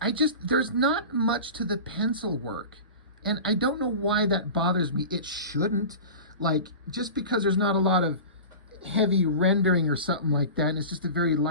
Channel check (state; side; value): inverted; both; correlation -0.33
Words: not much to the pencil work. And I don't know why that bothers me. It shouldn't. Like, just because there's not a lot of heavy rendering or something like that, and it's just a very